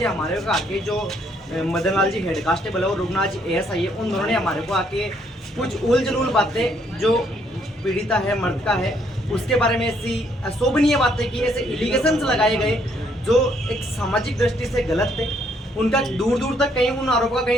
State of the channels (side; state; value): both; normal; correlation 0.69